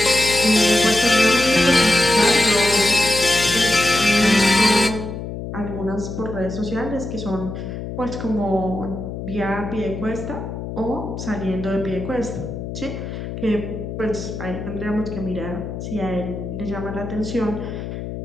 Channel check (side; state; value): left; noise; hum, 7 dB below the sound